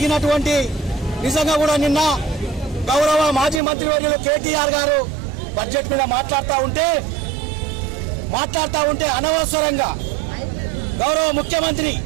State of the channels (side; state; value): left; drops out; at 3.6 s